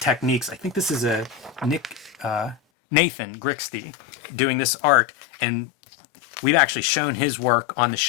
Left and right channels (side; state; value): right; drops out; at 2.6 s